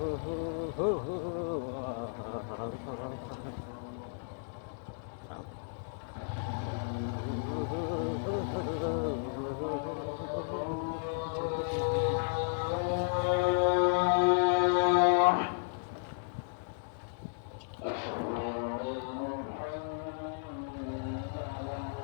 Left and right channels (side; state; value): right; silent; digital silence